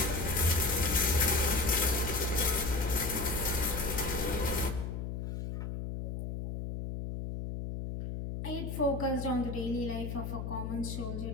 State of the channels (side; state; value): left; noise; hum, 4 dB below the sound